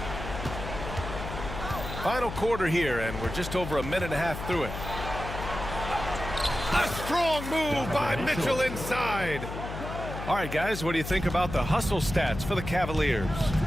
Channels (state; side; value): noise; left; hum, 8 dB below the sound